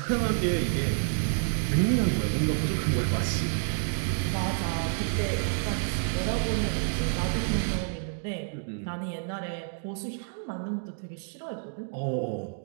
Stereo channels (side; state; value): left; silent; digital silence